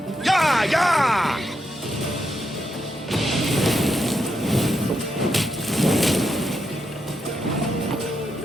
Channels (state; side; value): normal; both; correlation 0.83